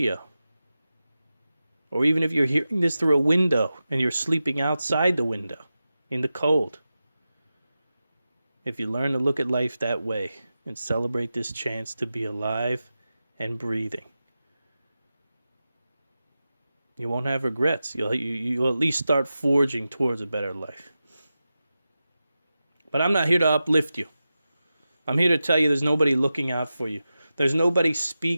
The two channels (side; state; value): both; inverted; correlation -0.93